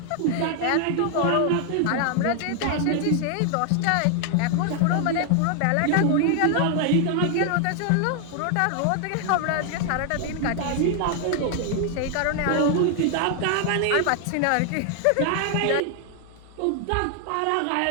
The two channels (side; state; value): both; different; correlation 0.00